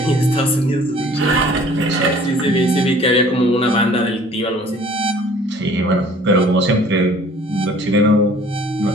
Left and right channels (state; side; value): normal; both; correlation 0.52